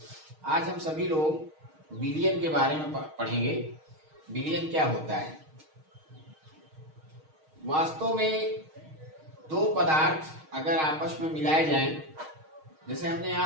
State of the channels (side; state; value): left; late; 6.4 ms